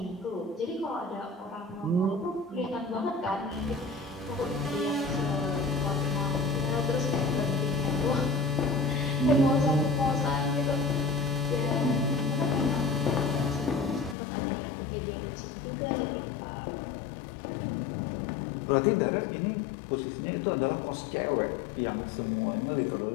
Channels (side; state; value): right; drops out; at 14.2 s